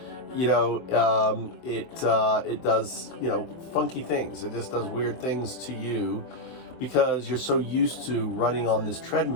it does, funky things. It just does weird things to you because you're so used to running on this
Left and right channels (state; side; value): late; right; 23 ms